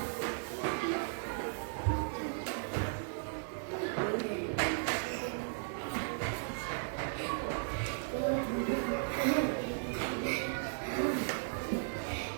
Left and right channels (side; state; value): left; silent; digital silence